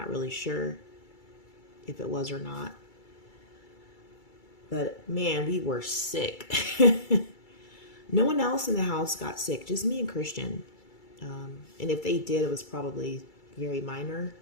really sure if it was or not. But man, we were sick. No one else in the house got sick, just me and Christian. And if they did, it was probably very minor.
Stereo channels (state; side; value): late; right; 2.3 ms